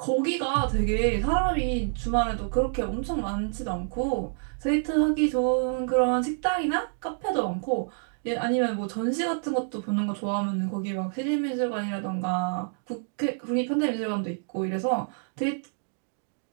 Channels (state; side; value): silent; left; digital silence